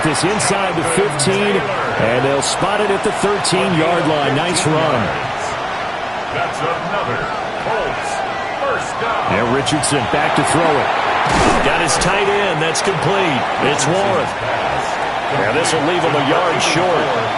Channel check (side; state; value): both; identical; correlation 1.00